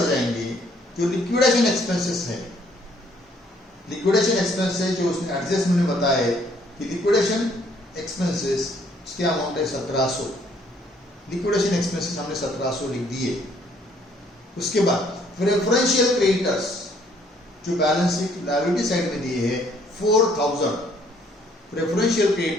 जाएंगे, जो लिक्विडेशन एक्सपेंसेस है। लिक्विडेशन एक्सपेंसेस जो उसने एडजस्टमेंट में बताया कि लिक्विडेशन एक्सपेंसेस उसके अमाउंट है 1700। लिक्विडेशन एक्सपेंसेस हमने 1700 लिख दिए। उसके बाद प्रेफरेंशियल क्रेडिटर्स जो बैलेंस शीट लायबिलिटी साइड में दिए हैं 4,000। प्रेफरेंशियल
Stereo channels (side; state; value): both; normal; correlation 0.64